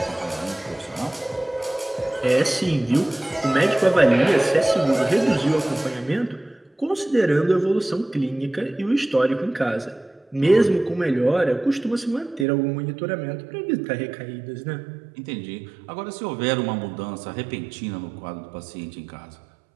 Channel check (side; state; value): left; drops out; at 12.5 s